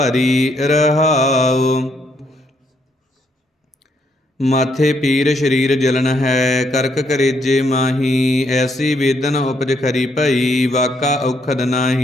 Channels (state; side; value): normal; both; correlation 0.73